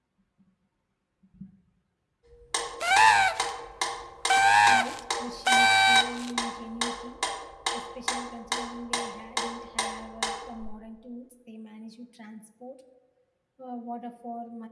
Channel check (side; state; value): both; identical; correlation 1.00